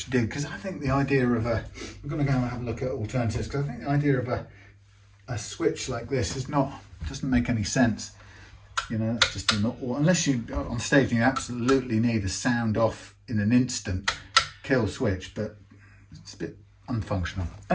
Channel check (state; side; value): identical; both; correlation 1.00